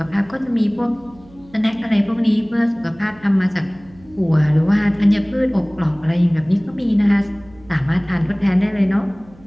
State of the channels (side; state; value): right; noise; hum, 25 dB below the sound